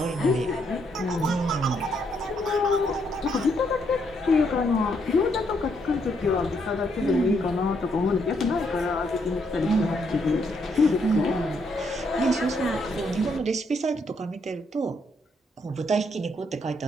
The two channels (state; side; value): normal; both; correlation 0.74